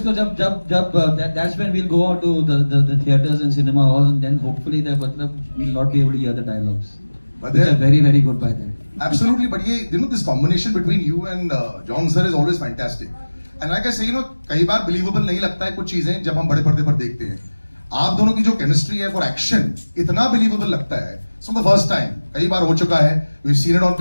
को जब that's when we'll go out to the theaters and cinema halls, and then hopefully we'll not be able to hear the dialogues. But which are very very good by then. Absolutely, but this combination between you and John sir is always fantastic. And like I say, कई बार believable नहीं लगता है कुछ चीजें जब हम बड़े पर्दे पर देखते हैं. आप दोनों की जो केमिस्ट्री है फॉर एक्शन इतना बिलीवेबल लगता है. So the first time, कई बार हो चुका है. We've seen it on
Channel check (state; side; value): inverted; both; correlation -1.00